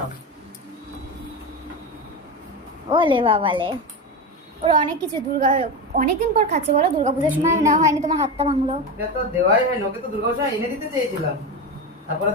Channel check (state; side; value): normal; both; correlation 0.19